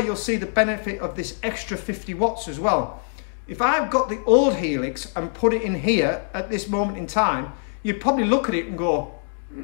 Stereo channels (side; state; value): right; silent; digital silence